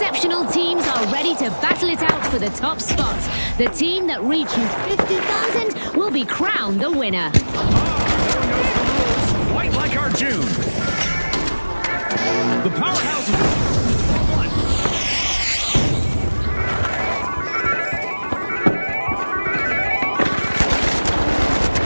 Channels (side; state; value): both; inverted; correlation -1.00